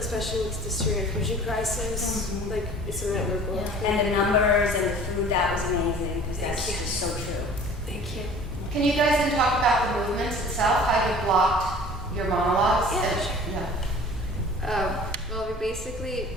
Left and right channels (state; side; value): normal; both; correlation 0.46